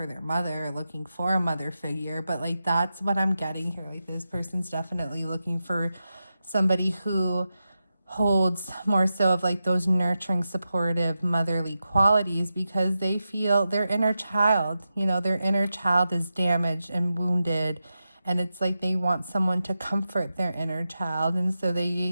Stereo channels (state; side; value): inverted; both; correlation -0.90